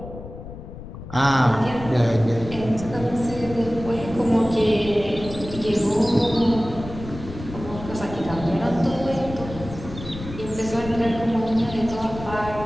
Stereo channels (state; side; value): noise; left; rumble, 12 dB below the sound